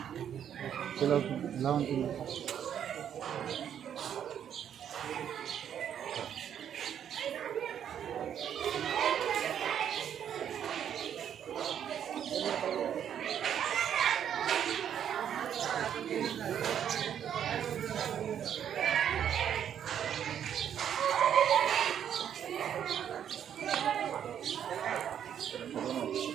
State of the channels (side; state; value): left; quieter; 9.2 dB